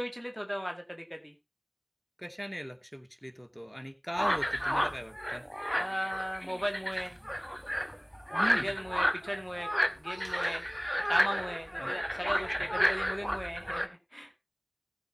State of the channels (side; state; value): both; identical; correlation 1.00